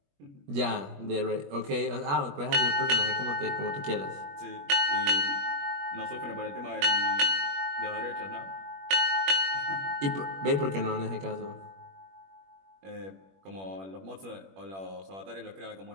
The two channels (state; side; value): late; left; 21 ms